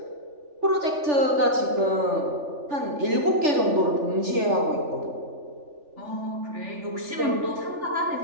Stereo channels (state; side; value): late; left; 3.4 ms